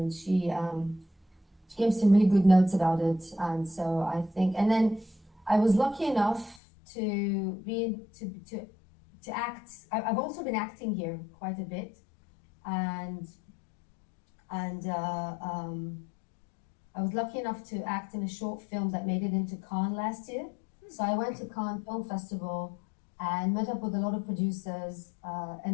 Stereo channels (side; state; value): right; drops out; at 6.6 s